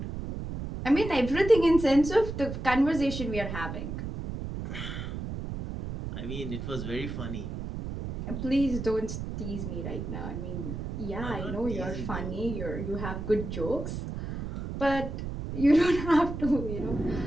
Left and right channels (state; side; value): noise; right; rumble, 6 dB below the sound